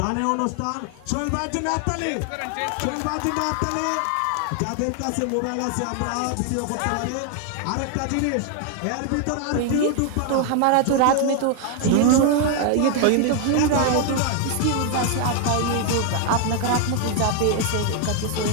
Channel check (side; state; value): both; different; correlation 0.00